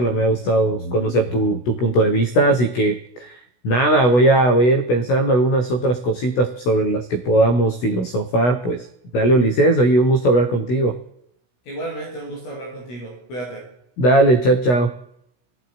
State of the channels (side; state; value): right; late; 16 ms